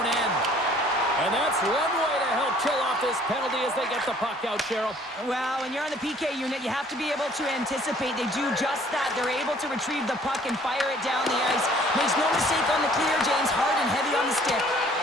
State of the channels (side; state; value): both; normal; correlation 0.56